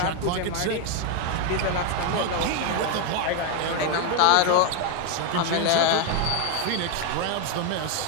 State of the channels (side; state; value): both; different; correlation 0.01